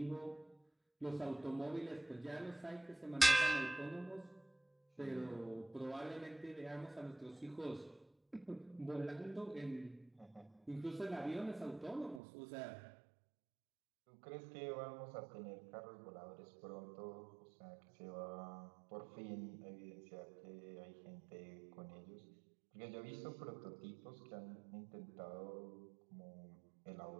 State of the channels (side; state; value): left; drops out; at 12.2 s